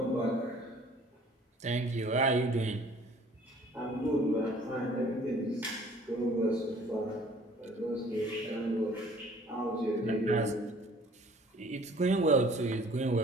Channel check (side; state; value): both; normal; correlation 0.54